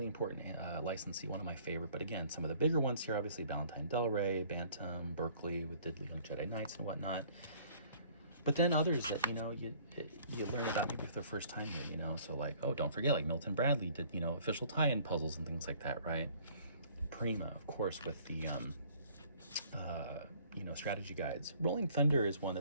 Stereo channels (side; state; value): both; inverted; correlation -0.56